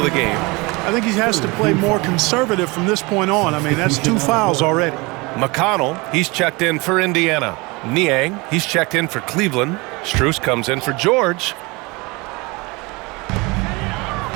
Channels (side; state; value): left; quieter; 25.5 dB